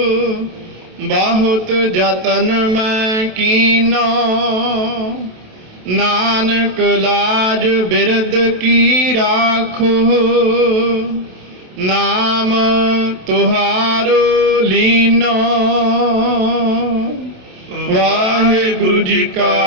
ਬਹੁਤ ਯਤਨ ਮੈਂ ਕੀਨੋ। ਨਾਨਕ ਲਾਜ ਬਿਰਦ ਕੀ ਰਾਖੋ, ਨਾਮ ਤੁਹਾਰੋ ਲੀਨੋ। ਵਾਹਿਗੁਰੂ ਜੀ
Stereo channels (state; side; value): late; left; 27 ms